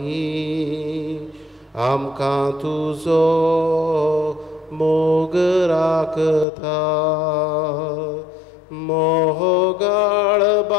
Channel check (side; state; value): right; drops out; at 6.5 s